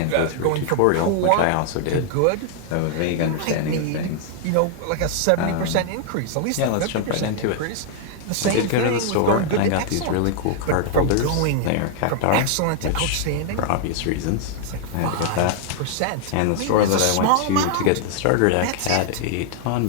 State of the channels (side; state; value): both; different; correlation 0.00